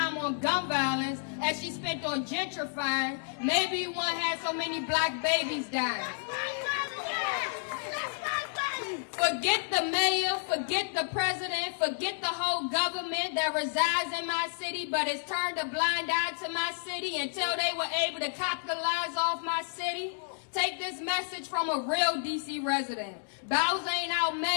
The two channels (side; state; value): right; silent; digital silence